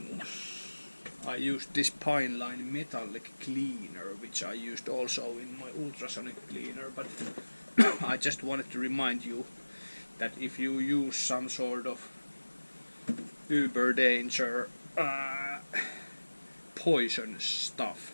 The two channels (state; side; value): inverted; both; correlation -1.00